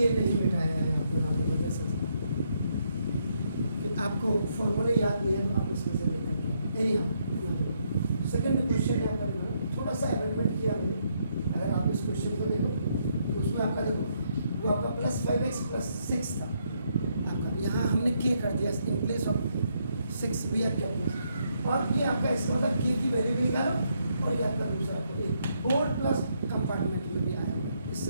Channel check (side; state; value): both; inverted; correlation -0.75